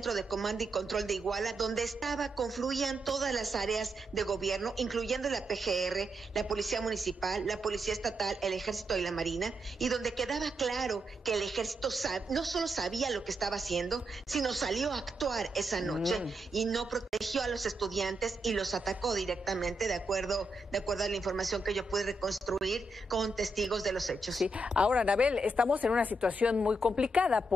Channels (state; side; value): normal; both; correlation 0.83